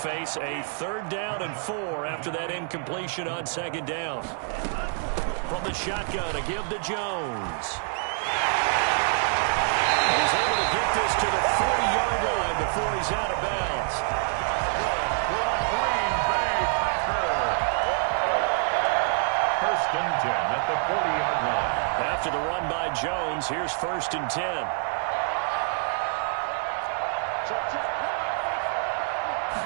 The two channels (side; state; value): left; silent; 57 dB below the other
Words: a 3rd down and 4 after that incompletion on second down. From the shotgun to give to Jones. And he's able to get this to the 40-yard line before he's out of bounds. Green Bay Packers. 1st and 10 at the 40-yard line. After the run by Jones, here's 1st and 10.